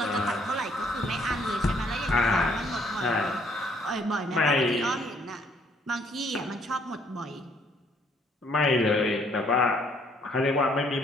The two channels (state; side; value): normal; both; correlation 0.65